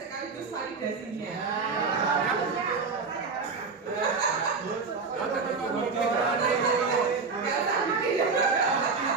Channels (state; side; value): quieter; left; 4.7 dB